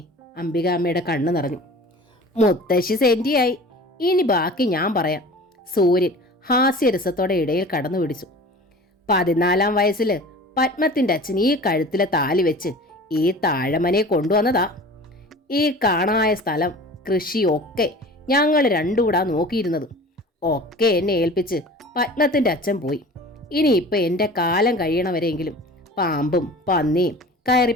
അംബികാമ്മയുടെ കണ്ണ് നിറഞ്ഞു. മുത്തശ്ശി സെന്റിയായി. ഇനി ബാക്കി ഞാൻ പറയാം. സൂര്യൻ ഹാസ്യരസത്തോടെ ഇടയിൽ കടന്നു പിടിച്ചു. 14-ാം വയസ്സിൽ പത്മത്തിൻ്റെ അച്ഛൻ ഈ കഴുത്തിലെ താലി വെച്ച് ഈ താഴമനെ കൊണ്ടുവന്നതാ. ഈ കാണായ സ്ഥലം, കൃഷിയൊക്കെ ഞങ്ങൾ രണ്ടുകൂടാ നോക്കിയിരുന്നത്. ഒക്കെ എന്നെ ഏൽപ്പിച്ച് പത്മത്തിൻ്റെ അച്ഛൻ പോയി. ഇനിയിപ്പോൾ എൻ്റെ കാലം കഴിയണവരെങ്കിലും പാമ്പും പന്നിയും കയറി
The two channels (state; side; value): normal; both; correlation 0.40